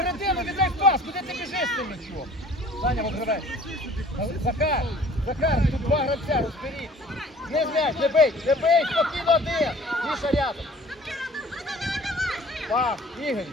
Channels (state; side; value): normal; both; correlation 0.49